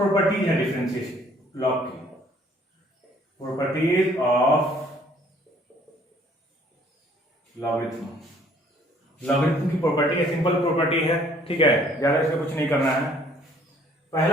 है डिफरेंशिएशन लॉग की, प्रॉपर्टीज ऑफ लॉगरिथम। लॉगरिथम की प्रॉपर्टी है, सिंपल प्रॉपर्टी है। ठीक है, ज्यादा इसमें कुछ नहीं करना है।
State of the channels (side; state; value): both; normal; correlation 0.59